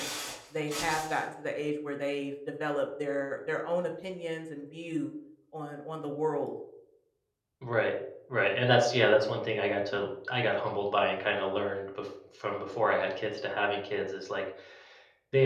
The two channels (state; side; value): identical; both; correlation 1.00